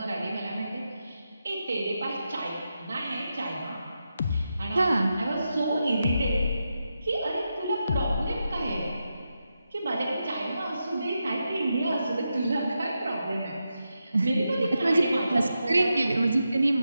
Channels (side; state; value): both; inverted; correlation -0.88